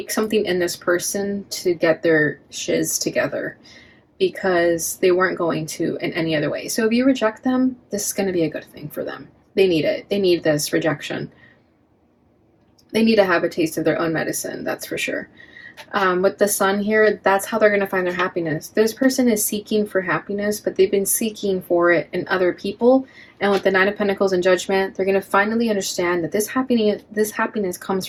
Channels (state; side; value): identical; both; correlation 1.00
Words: something in this person to get their shiz together, because they weren't going to in any other way. So if you reject them, this is going to be a good thing for them. They need it. They need this rejection. They need to have a taste of their own medicine, that's for sure. With the sun here, that's how they're going to find their happiness. This person is seeking for happiness, but they've been seeking for it in other people. And with the Nine of Pentacles and Judgment, they're going to finally understand that this happiness comes